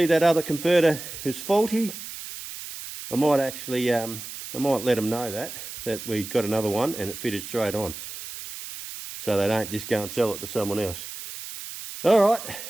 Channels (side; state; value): right; noise; hiss, 10 dB below the sound